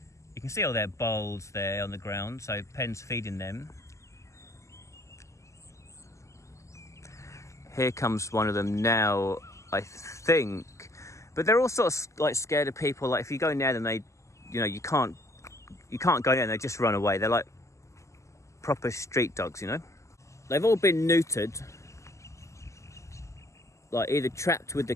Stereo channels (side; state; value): right; late; 0.14 ms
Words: you can see all their bowls there on the ground. So Penn's feeding them. Here comes one of them now, I think. But they're all sort of like scared of people. Like if you go near them, they, you know, you can't go near them, they just run away. They're like proper street dogs, you know. They've all been neutered. Like either trapped with the